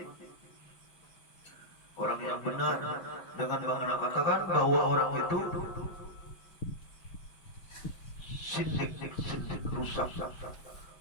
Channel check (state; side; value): late; right; 5.7 ms